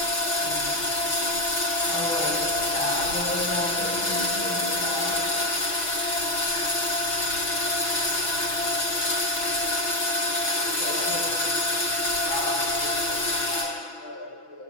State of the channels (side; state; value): right; late; 6.1 ms